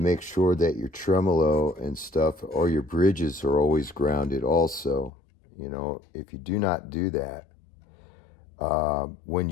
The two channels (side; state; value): right; drops out; at 5.1 s